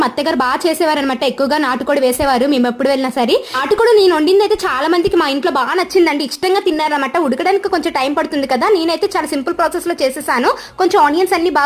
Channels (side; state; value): both; identical; correlation 1.00